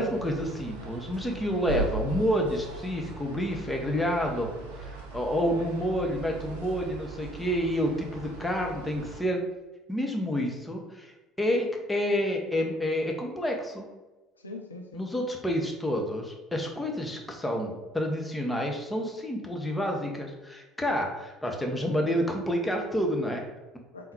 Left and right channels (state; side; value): normal; both; correlation 0.64